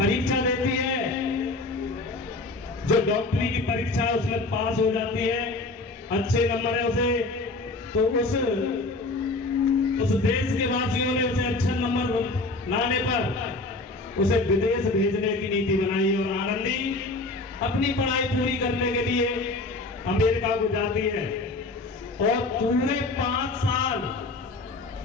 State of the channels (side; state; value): right; quieter; 3.2 dB